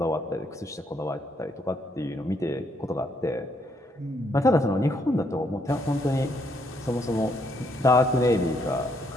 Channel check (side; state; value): both; normal; correlation 0.72